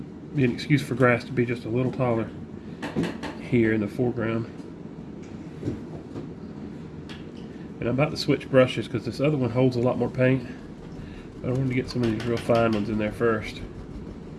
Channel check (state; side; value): identical; both; correlation 1.00